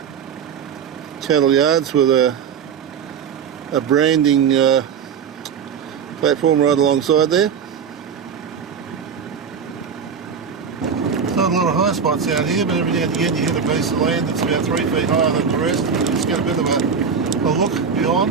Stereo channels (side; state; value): left; quieter; 6.8 dB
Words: Cattle yards with a branding platform right alongside there. There's not a lot of high spots out here, but every now and again you hit a piece of land that's about 3 feet higher than the rest. It's got a bit of a look